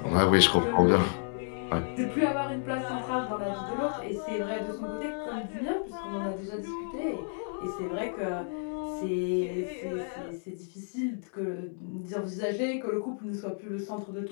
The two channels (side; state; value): right; silent; digital silence